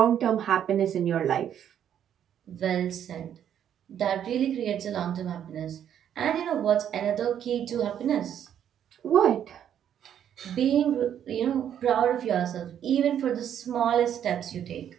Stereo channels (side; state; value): left; quieter; 9.6 dB